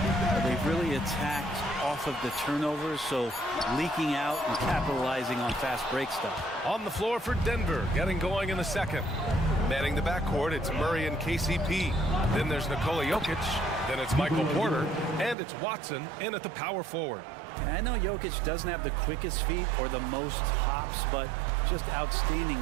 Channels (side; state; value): left; drops out; at 15.4 s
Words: They've really attacked off of the turnovers, so leaking out and capitalizing on fast break stuff. On the floor for Denver, getting going in the second. Manning the backcourt, it's Murray and KCP. Then there's Nikola Jokic. Then it's Michael Porter. And it's Watson in at the power forward. And I know Jokic doesn't have the quickest feet or the most hops, but just outstanding